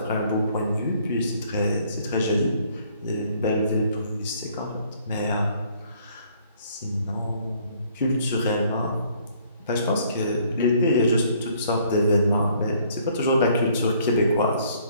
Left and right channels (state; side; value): inverted; both; correlation -0.62